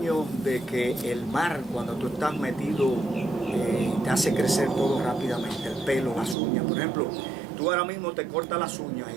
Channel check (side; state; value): left; drops out; at 6.4 s